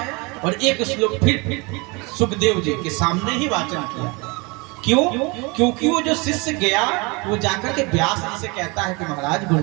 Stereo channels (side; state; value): left; quieter; 27.8 dB